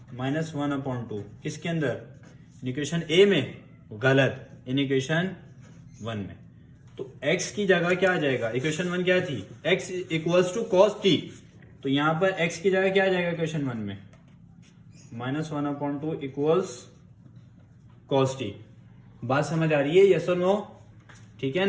-1/2 किसके अंदर, इक्वेशन a में, गलत, इन इक्वेशन 1 में। तो x की जगह क्या आ जाएगा, इक्वेशन 1 क्या थी, x equals to cos t, तो यहां पर x की जगह क्या आ जाएगा इक्वेशन 1 में, -1/2 इक्वल्स कॉस t। बात समझ आ रही है, यस और नो? ठीक है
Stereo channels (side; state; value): both; identical; correlation 1.00